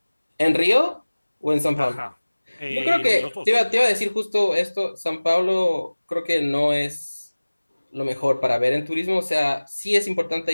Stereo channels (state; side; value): inverted; both; correlation -1.00